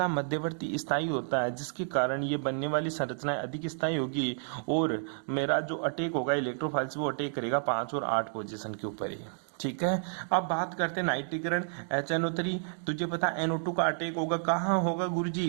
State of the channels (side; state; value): left; silent; digital silence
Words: मध्यवर्ती स्थायी होता है, जिसके कारण ये बनने वाली संरचनाएं अधिक स्थायी होगी और मेरा जो अटैक होगा इलेक्ट्रोफाइल्स वो अटैक करेगा 5 और 8 पोजीशन के ऊपर ही, ठीक है। अब बात करते हैं नाइट्रीकरण HNO3, तुझे पता NO2 का अटैक होगा, कहाँ होगा गुरुजी?